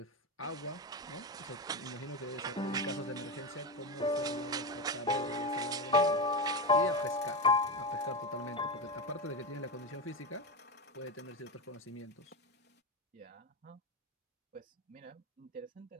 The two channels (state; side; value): normal; both; correlation 0.16